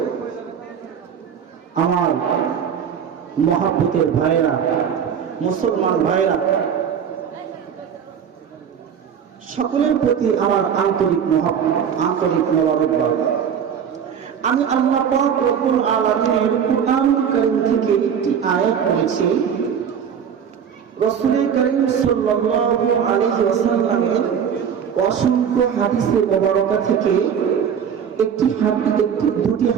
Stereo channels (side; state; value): left; quieter; 7.8 dB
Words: আমার মহব্বতের ভাইরা, মুসলমান ভাইরা, সকলের প্রতি আমার আন্তরিক মোবারকবাদ। আমি আল্লাহ পাক রব্বুল আলামিনের কুরআনুল কারীম থেকে একটি আয়াত পড়েছি। রাসূল কারীম সাল্লাল্লাহু আলাইহি ওয়াসাল্লামের অসংখ্য হাদিসে মুবারকা থেকে দুটি